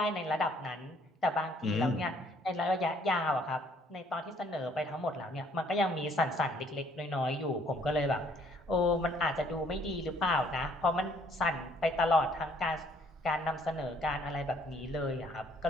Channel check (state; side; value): normal; both; correlation 0.63